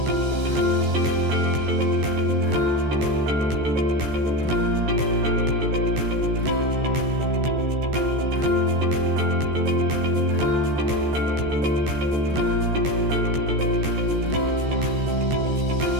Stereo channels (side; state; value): left; late; 14 ms